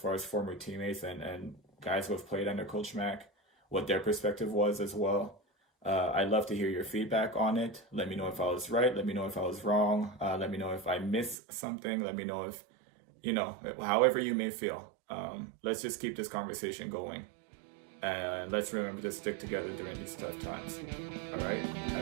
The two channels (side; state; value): left; drops out; at 11.4 s